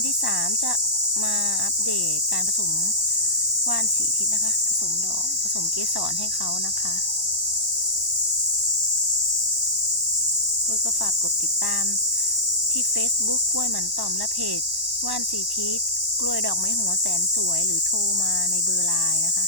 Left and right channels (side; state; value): left; late; 1.1 ms